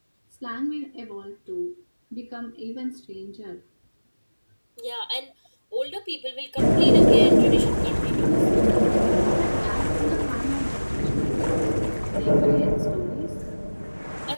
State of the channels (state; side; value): inverted; both; correlation -1.00